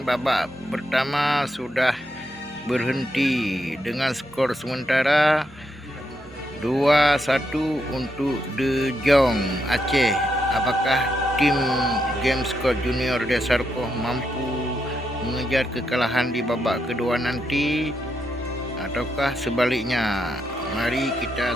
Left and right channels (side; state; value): both; normal; correlation 0.81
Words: babak pertama sudah berhenti dengan skor sementara 2-1 untuk De Jong Aceh. Apakah tim Gamescode Junior Desarkoh mampu mengejar kekalahan di babak kedua nanti ataukah sebaliknya? Mari kita